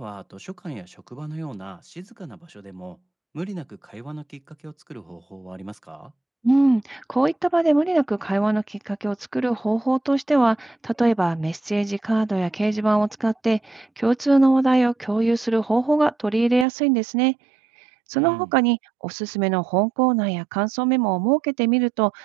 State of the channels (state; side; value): drops out; left; at 16.7 s